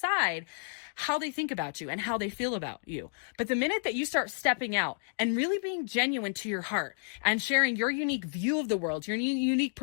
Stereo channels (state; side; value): silent; right; digital silence